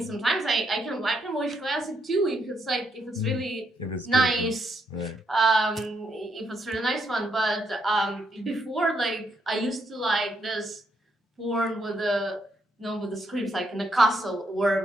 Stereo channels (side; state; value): both; normal; correlation 0.77